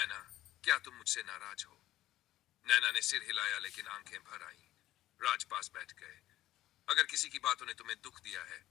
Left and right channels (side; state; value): right; quieter; 14.7 dB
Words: क्या तुम मुझसे नाराज हो? नैना ने सिर हिलाया, लेकिन आंखें भर आईं। राज पास बैठ गए। अगर किसी की बातों ने तुम्हें दुख दिया है